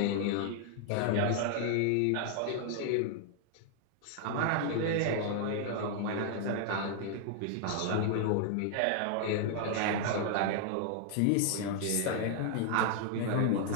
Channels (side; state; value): both; different; correlation 0.00